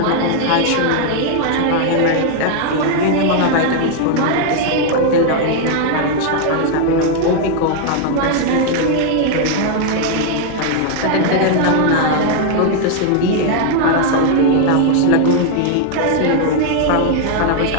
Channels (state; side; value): different; both; correlation 0.00